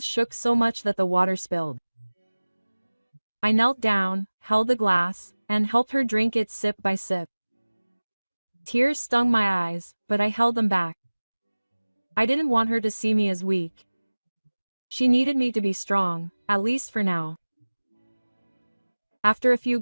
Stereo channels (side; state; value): both; inverted; correlation -1.00